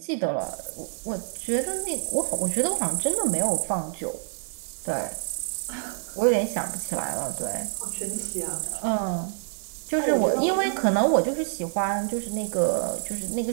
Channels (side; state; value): left; silent; digital silence